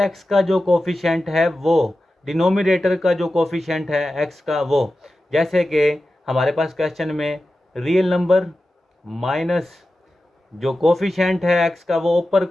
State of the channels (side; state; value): both; normal; correlation 0.93